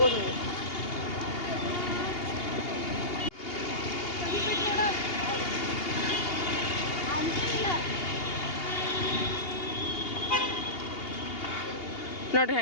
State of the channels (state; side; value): late; right; 2.8 ms